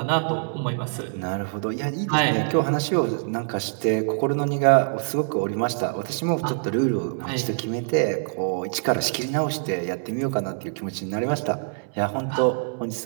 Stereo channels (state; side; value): silent; left; 62 dB below the other